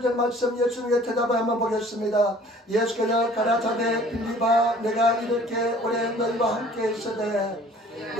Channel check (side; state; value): both; normal; correlation 0.52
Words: 말씀 예수님의 대답을 한번 보겠습니다. 예수께서 가라사대 빌립아 내가 이렇게 오래 너희와 함께 있으되